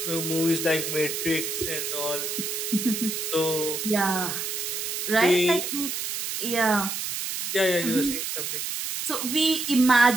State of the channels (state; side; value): noise; right; hiss, 3 dB below the sound